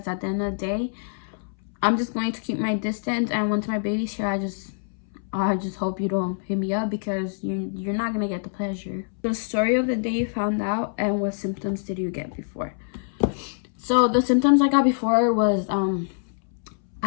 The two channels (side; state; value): right; silent; 62 dB below the other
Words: at the end of the day, I'm just going to keep my distance. And once my baby's here, I just hope you don't hit me up, because you're not gonna get the pleasure. The story of the day you found out, and what symptoms did you get before? So the symptoms I got before was